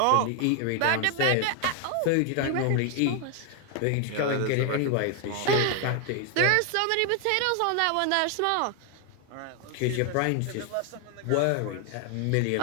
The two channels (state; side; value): different; both; correlation 0.00